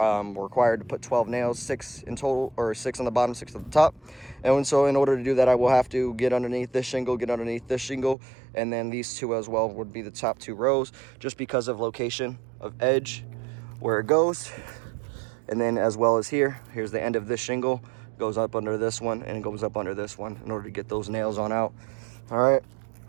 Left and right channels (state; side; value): drops out; left; at 8.2 s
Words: we're required to put 12 nails, 6 in total, or 6 on the bottom, 6 at the top. And so in order to do that, I will have to get underneath this shingle, and then these 2 as well would be the top 2 rows, just because of location of edge where it goes. And then as well as here's the end of this shingle, goes up under this one and goes up under this one in order to get those nails on out. All right,